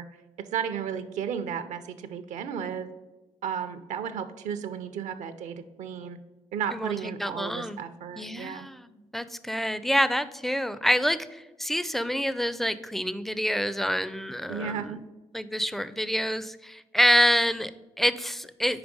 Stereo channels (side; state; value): both; normal; correlation 0.85